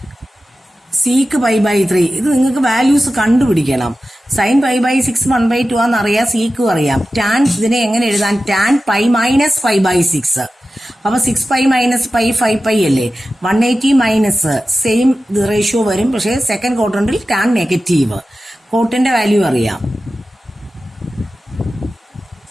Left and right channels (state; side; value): normal; both; correlation 0.94